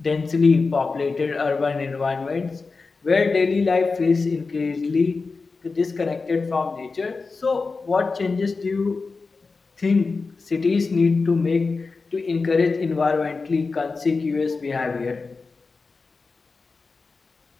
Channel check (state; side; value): quieter; right; 4.2 dB